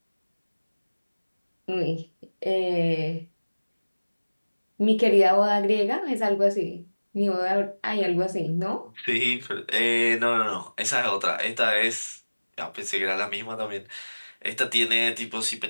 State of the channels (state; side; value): inverted; both; correlation -1.00